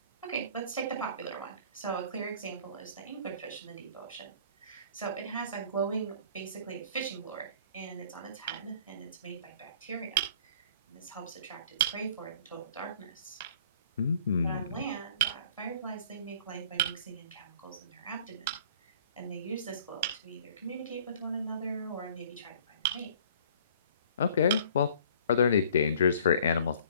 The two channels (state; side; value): inverted; both; correlation -0.52